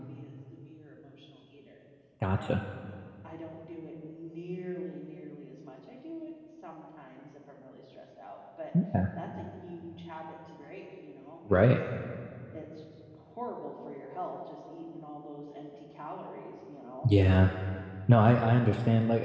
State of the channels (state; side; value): identical; both; correlation 1.00